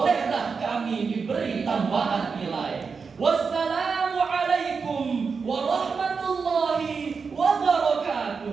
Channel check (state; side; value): quieter; left; 5.2 dB